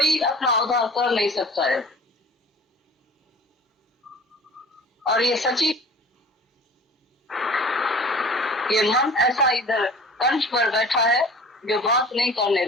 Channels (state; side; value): normal; both; correlation 0.44